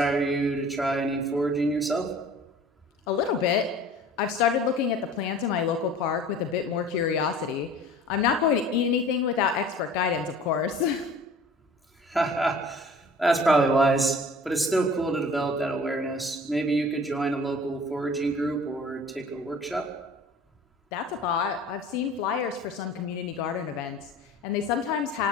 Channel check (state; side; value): normal; both; correlation 0.45